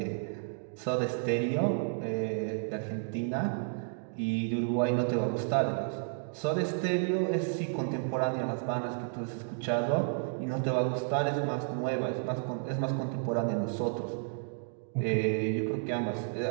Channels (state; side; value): silent; left; digital silence